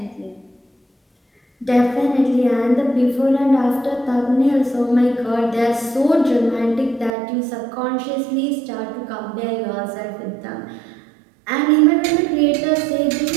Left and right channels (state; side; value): drops out; left; at 7.1 s